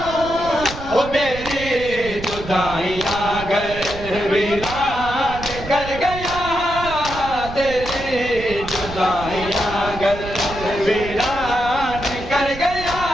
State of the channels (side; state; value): right; noise; rumble, 11 dB below the sound